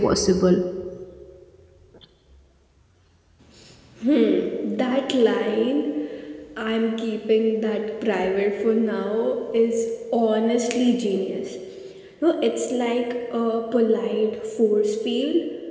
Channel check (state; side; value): identical; both; correlation 1.00